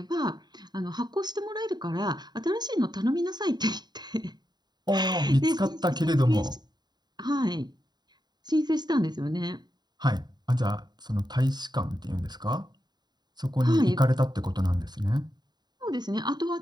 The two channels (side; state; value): left; late; 0.20 ms